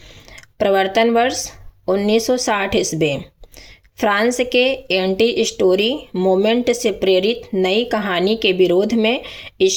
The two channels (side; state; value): both; identical; correlation 1.00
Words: प्रवर्तन वर्ष 1960 ईस्वी। फ्रांस के एंटी स्टोरी मूवमेंट से प्रेरित नई कहानी के विरोध में